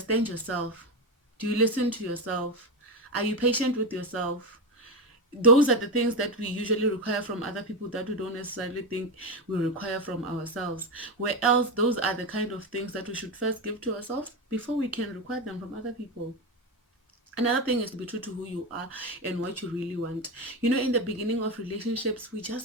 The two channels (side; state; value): both; normal; correlation 0.13